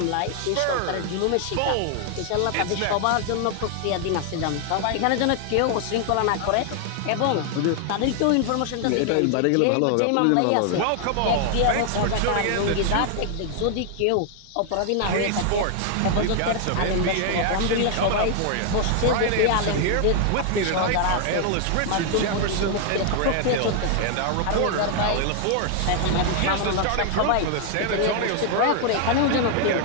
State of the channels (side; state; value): both; different; correlation 0.00